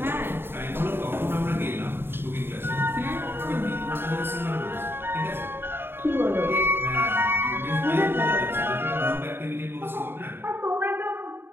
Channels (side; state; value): left; late; 0.11 ms